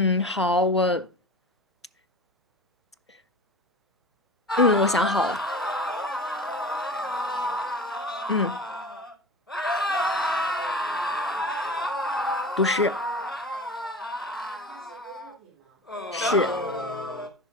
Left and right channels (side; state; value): both; normal; correlation 0.34